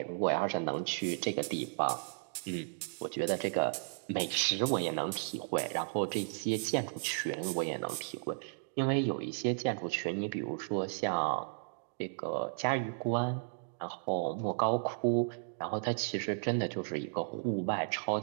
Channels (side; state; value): left; silent; digital silence